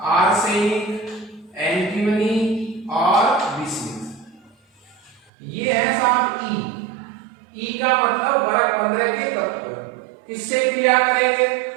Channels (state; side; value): drops out; left; at 5.3 s